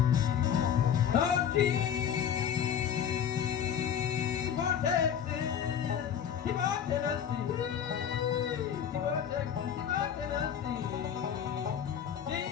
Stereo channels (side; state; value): right; quieter; 8.6 dB